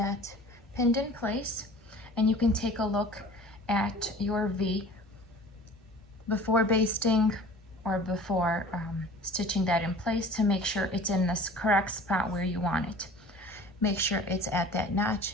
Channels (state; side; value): normal; both; correlation 0.44